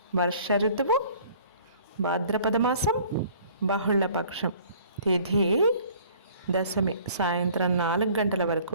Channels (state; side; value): inverted; both; correlation -0.53